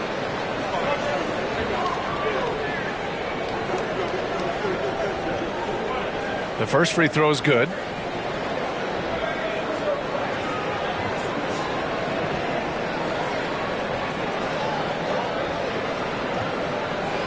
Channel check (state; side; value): identical; both; correlation 1.00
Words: The first free throw is good.